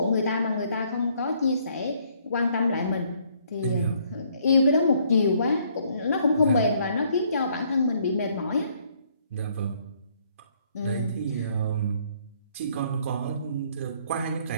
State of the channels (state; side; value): inverted; both; correlation -0.66